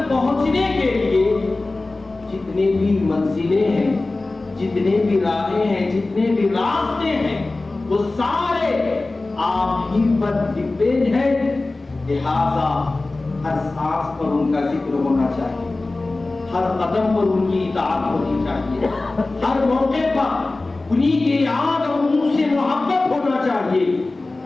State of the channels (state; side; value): quieter; right; 3.2 dB